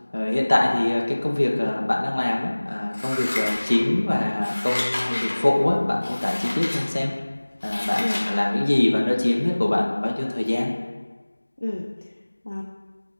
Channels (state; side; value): inverted; both; correlation -1.00